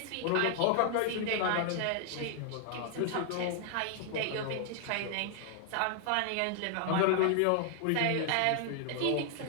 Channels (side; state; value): both; different; correlation 0.00